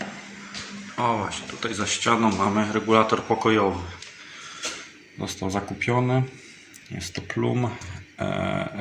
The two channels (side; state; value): both; identical; correlation 1.00